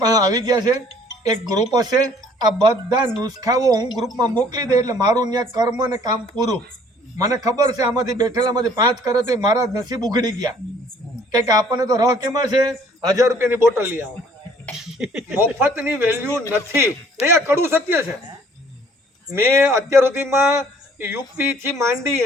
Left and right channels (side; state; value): both; normal; correlation 0.57